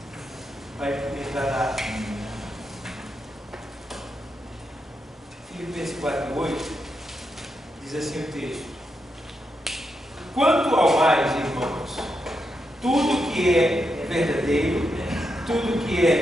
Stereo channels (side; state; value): both; normal; correlation 0.84